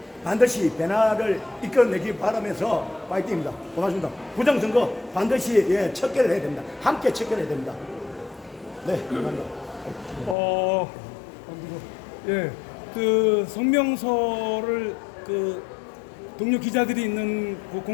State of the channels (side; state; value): right; drops out; at 10.4 s